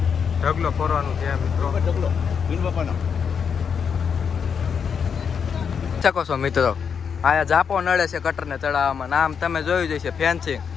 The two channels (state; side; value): quieter; right; 6.7 dB